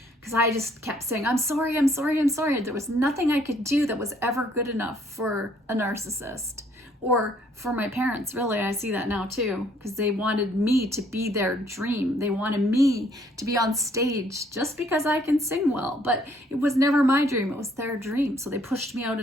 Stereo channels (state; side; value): normal; both; correlation 0.64